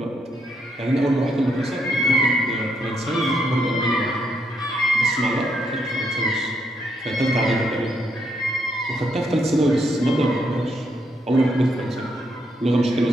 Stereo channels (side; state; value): both; normal; correlation 0.76